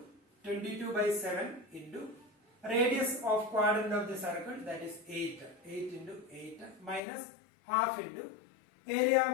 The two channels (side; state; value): right; drops out; at 7.0 s